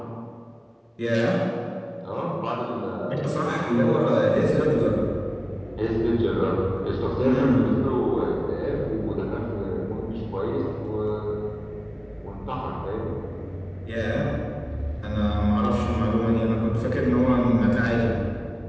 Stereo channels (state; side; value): identical; both; correlation 1.00